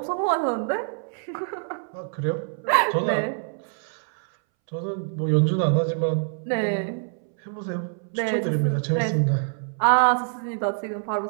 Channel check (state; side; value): silent; left; 61 dB below the other